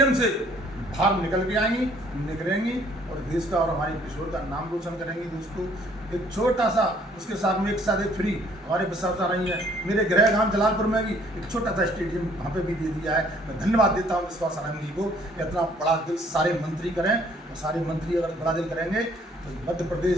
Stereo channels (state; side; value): normal; both; correlation 0.61